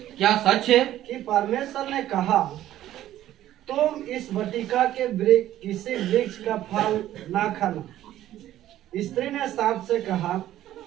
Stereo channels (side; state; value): left; quieter; 13.1 dB